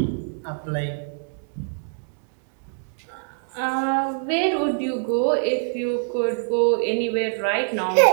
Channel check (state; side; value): silent; left; digital silence